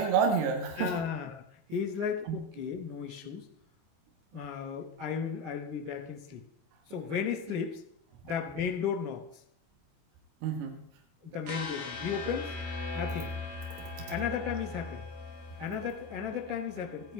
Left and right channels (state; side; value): late; left; 25 ms